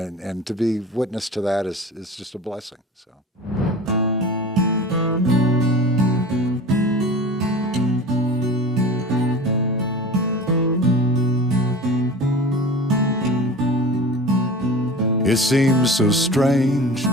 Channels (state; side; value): normal; both; correlation 0.36